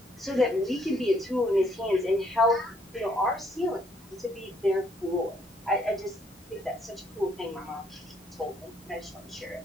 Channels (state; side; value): normal; both; correlation 0.68